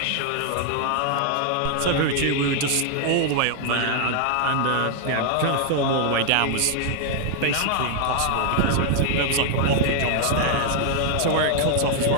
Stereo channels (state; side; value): different; both; correlation 0.00